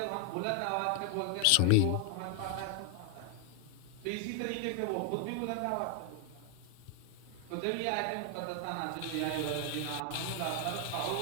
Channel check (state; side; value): different; both; correlation 0.00